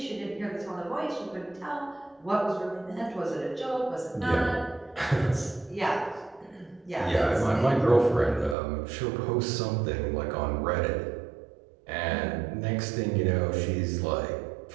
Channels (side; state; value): left; drops out; at 8.6 s